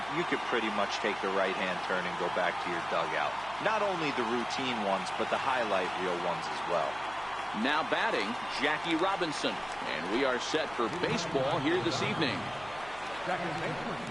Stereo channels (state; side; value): noise; right; hum, 20 dB below the sound